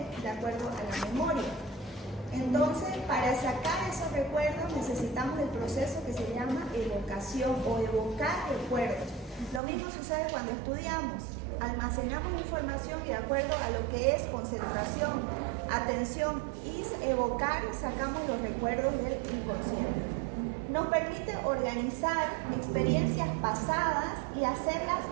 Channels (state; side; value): drops out; left; at 9.6 s